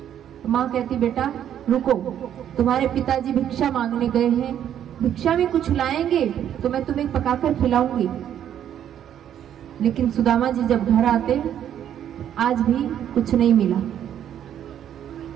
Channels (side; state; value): left; quieter; 10.1 dB